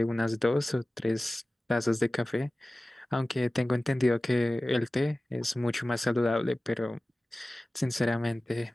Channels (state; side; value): normal; both; correlation 0.97